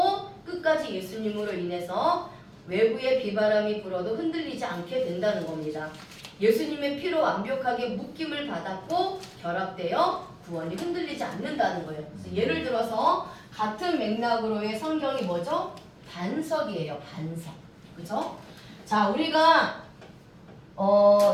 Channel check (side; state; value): both; identical; correlation 1.00